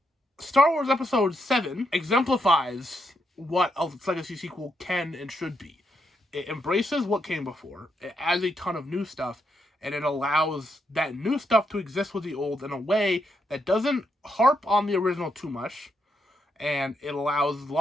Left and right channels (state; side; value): normal; both; correlation 0.80